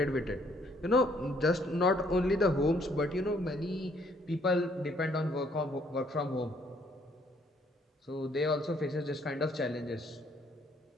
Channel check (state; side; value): normal; both; correlation 0.66